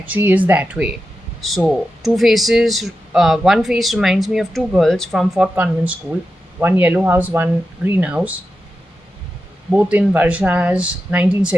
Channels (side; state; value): both; normal; correlation 0.90